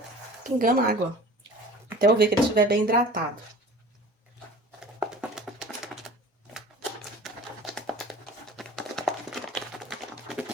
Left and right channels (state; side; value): normal; both; correlation 0.42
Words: pingando água. Até eu ver que ele estiver bem hidratado.